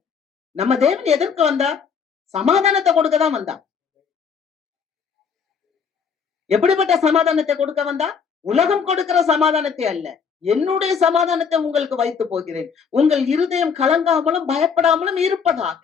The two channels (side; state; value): right; quieter; 6.3 dB